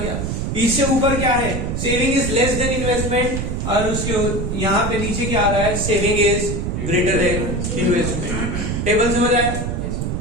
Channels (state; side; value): noise; right; rumble, 2 dB below the sound